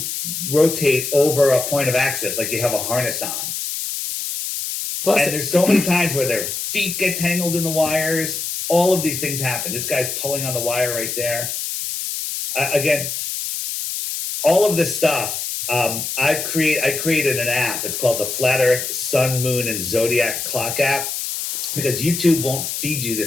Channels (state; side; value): noise; left; hiss, 4 dB below the sound